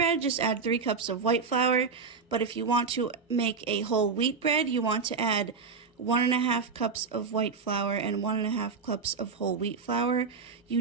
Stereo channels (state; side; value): quieter; left; 5.1 dB